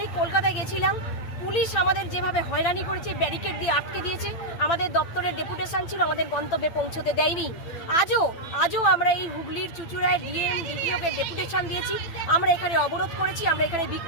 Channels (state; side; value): late; right; 9.0 ms